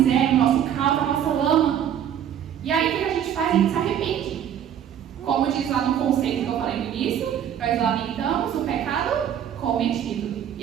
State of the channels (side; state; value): left; quieter; 9.6 dB